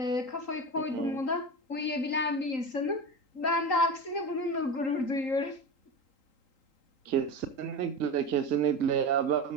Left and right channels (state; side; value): late; right; 3.8 ms